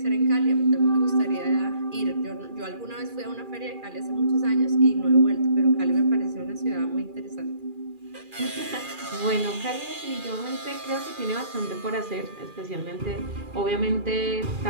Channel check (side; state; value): left; late; 2.4 ms